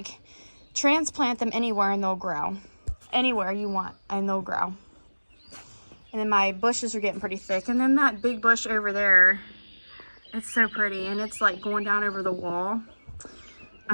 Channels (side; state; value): both; inverted; correlation -1.00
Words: transplant them anywhere and they'll grow. Anywhere you want and they'll grow. And then my bushes are getting pretty thick. And then that big bush over there, it's so pretty. And it's like going down over the wall.